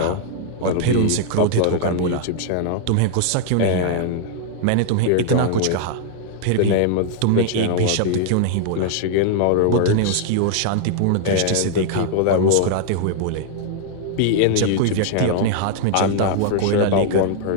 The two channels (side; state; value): both; different; correlation 0.00